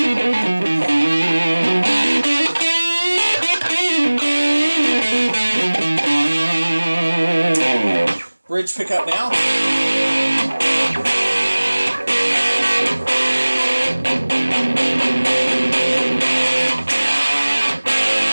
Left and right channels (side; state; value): both; inverted; correlation -1.00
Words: Bridge pickup now.